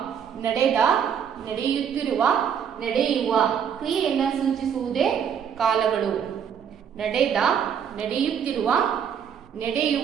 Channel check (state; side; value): quieter; left; 8.0 dB